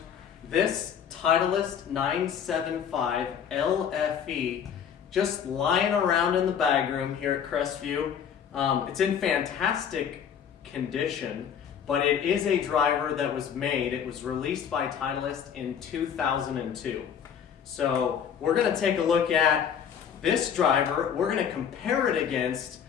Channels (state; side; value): quieter; right; 8.1 dB